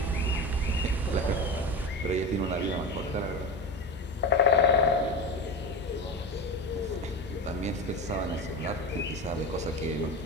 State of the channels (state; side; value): normal; both; correlation 0.25